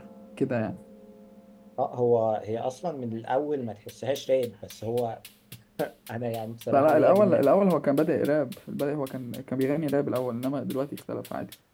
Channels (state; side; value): identical; both; correlation 1.00